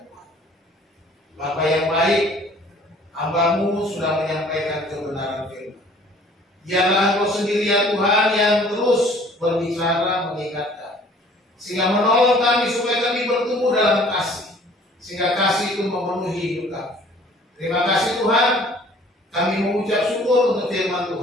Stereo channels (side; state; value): both; normal; correlation 0.54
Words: Tuhan. Bapa yang baik, hamba-Mu sudah menyampaikan kebenaran firman. Biarlah Engkau sendiri ya Tuhan yang terus berbicara, mengingatkan, sehingga menolong kami supaya kami bertumbuh dalam kasih, sehingga kasih itu memenuhi hidup kami. Terima kasih Tuhan, kami mengucap syukur untuk firman